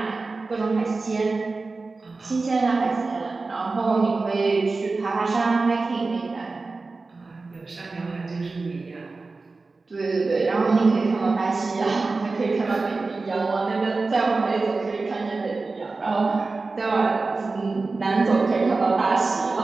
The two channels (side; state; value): left; quieter; 3.8 dB